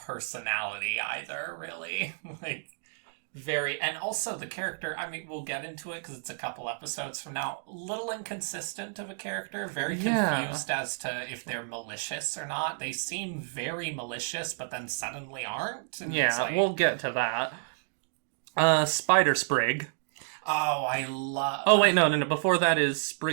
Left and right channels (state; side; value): silent; left; digital silence